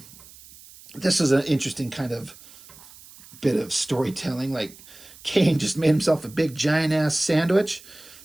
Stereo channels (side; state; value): right; noise; hiss, 21 dB below the sound